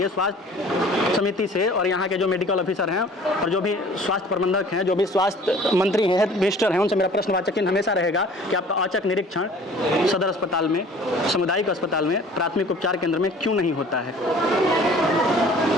स्वास्थ्य समिति से और यहाँ के जो मेडिकल ऑफिसर हैं और जो भी स्वास्थ्य प्रबंधक हैं, जो भी स्वास्थ्य मंत्री हैं, हेल्थ मिनिस्टर हैं, उनसे मेरा प्रश्नवाचक चिन्ह हमेशा रहेगा कि आपका औचक निरीक्षण सदर अस्पताल में, सामुदायिक अस्पताल में, प्राथमिक उपचार केंद्र में क्यों नहीं होता है।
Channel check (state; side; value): normal; both; correlation 0.49